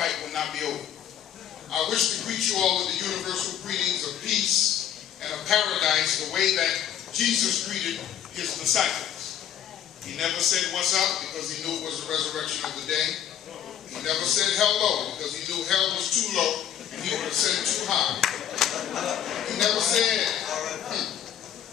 will not be over. I wish to greet you all with the universal greetings of peace and of paradise, the way that Jesus greeted his disciples. He never said what's up because he knew it was the resurrection of the day. He never said hello because he knew hell was too low and he would have said it too high. He never said,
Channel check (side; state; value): right; quieter; 9.9 dB